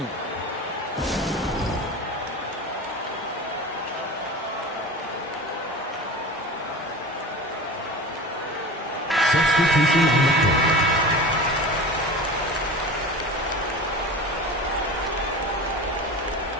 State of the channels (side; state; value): both; normal; correlation 0.32